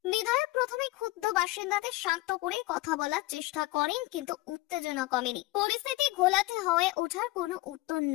বিধায়ক প্রথমে ক্ষুব্ধ বাসিন্দাদের শান্ত করে কথা বলার চেষ্টা করেন, কিন্তু উত্তেজনা কমেনি। পরিস্থিতি ঘোলাটে হয়ে ওঠার কোনো উত্তর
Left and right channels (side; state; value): right; quieter; 19.6 dB